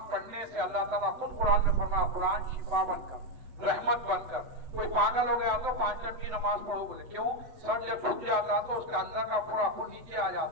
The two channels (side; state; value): left; late; 7.9 ms